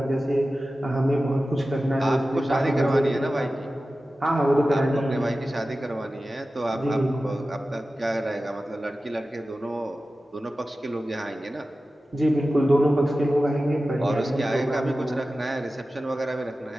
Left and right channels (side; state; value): both; normal; correlation 0.95